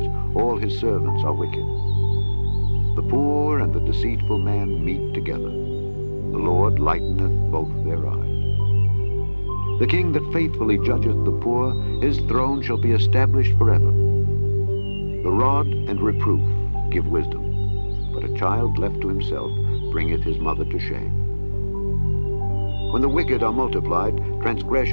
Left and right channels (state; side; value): inverted; both; correlation -1.00